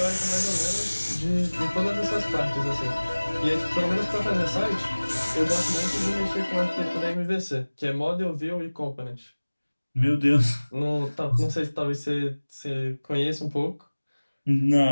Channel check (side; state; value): both; inverted; correlation -1.00